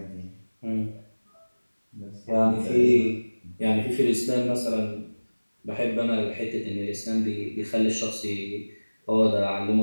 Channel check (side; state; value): both; inverted; correlation -1.00